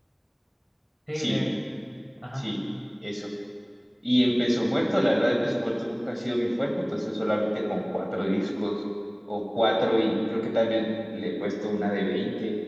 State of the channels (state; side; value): identical; both; correlation 1.00